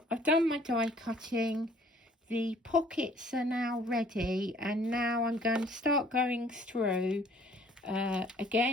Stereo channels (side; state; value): both; normal; correlation 0.57